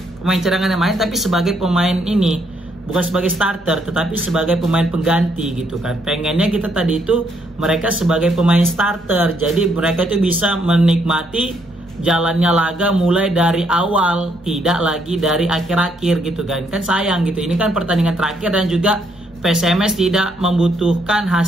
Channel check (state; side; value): noise; right; hum, 27 dB below the sound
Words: pemain cadangan yang main tapi sebagai pemain ini bukan sebagai starter tetapi sebagai pemain pengganti gitu kan. Pengennya kita tadi itu mereka sebagai pemain starter, jadi mereka itu bisa menikmati jalannya laga mulai dari awal, tidak lagi dari akhir-akhir gitu kan. Kan sayang gitu, ini kan pertandingan terakhir dan juga PSMS tidak membutuhkan